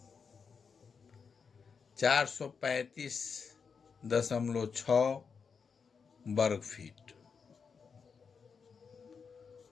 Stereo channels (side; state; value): right; quieter; 5.8 dB